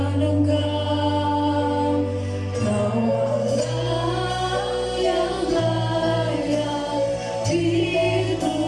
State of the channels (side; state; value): both; identical; correlation 1.00